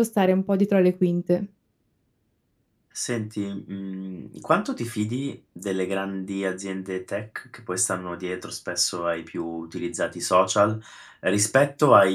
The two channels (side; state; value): both; identical; correlation 1.00